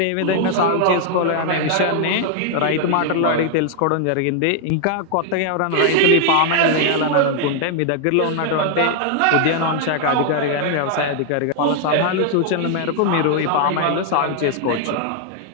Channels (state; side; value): different; both; correlation 0.00